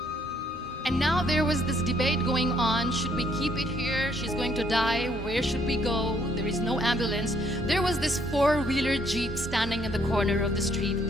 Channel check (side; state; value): both; normal; correlation 0.67